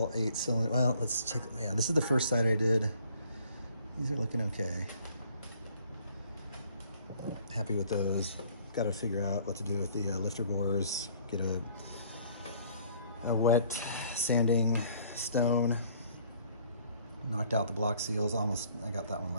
8 cylinder. Well, let's check. Yeah, this is the first side I did. These are looking okay. Happy with those. Got to figure out what to do with the lifter bores. Get a wet sanding stone. Knocked out the block seals. I got that one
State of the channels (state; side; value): inverted; both; correlation -0.58